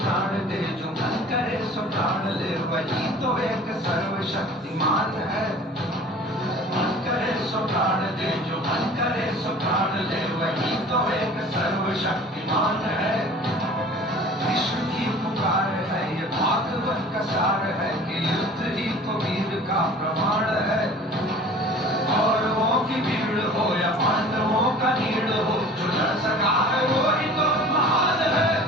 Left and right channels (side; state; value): both; normal; correlation 0.45